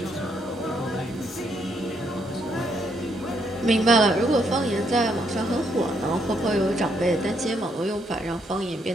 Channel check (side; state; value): both; normal; correlation 0.74